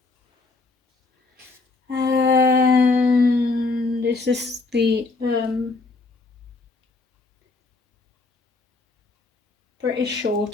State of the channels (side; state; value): right; quieter; 3.6 dB